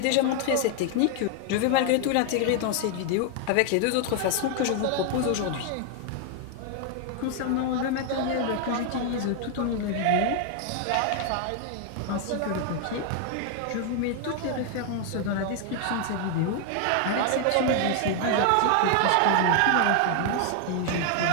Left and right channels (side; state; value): both; different; correlation 0.00